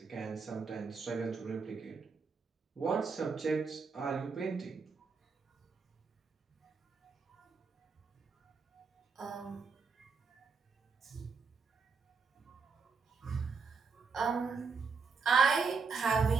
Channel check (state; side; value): quieter; left; 5.0 dB